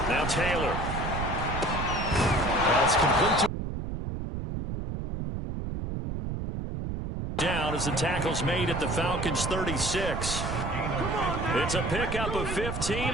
8. Now Taylor. That's complete to down as the tackle's made at the Falcons 36. It's a pickup of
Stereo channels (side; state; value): right; noise; rumble, 4 dB below the sound